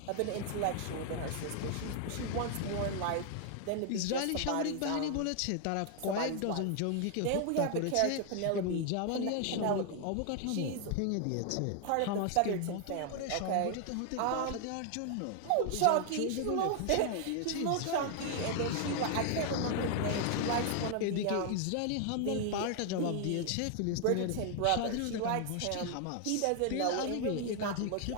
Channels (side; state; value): both; different; correlation 0.00